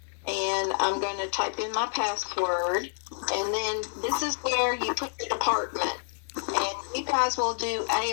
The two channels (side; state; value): right; silent; digital silence